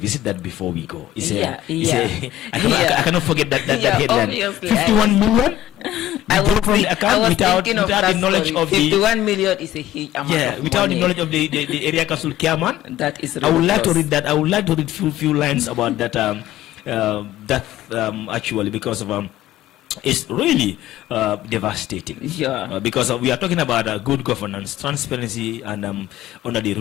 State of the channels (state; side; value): quieter; right; 13.3 dB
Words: that before we go. I cannot forget that headline. 51 million? I was without the knowledge of 51 million is a huge amount. Yeah, without the knowledge of the area council chairman. That is ridiculous. I would like to read that. I would like to read few lines about that. Actually, because of it's really devastating. Yeah. Because we are talking about good governance, transparency, and under the